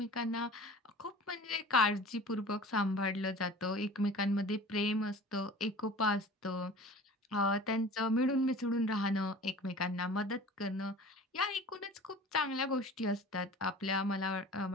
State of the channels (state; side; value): normal; both; correlation 0.41